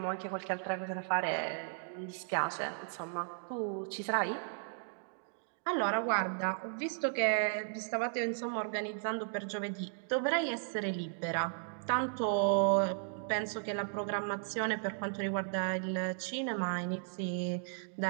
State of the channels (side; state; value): left; silent; digital silence